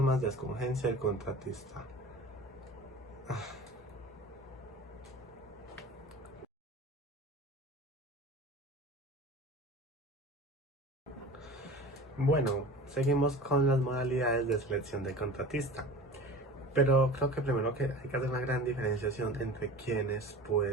de escogencia del contratista. Bueno, seguimos con las modalidades de selección del contratista. Pero creo que primero que hay que hacer una gran diferenciación entre quiénes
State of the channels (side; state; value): both; normal; correlation 0.37